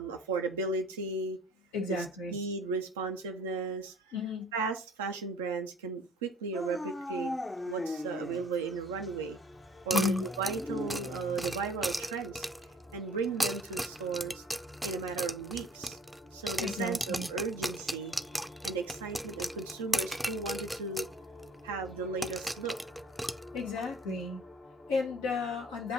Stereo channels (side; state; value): both; normal; correlation 0.52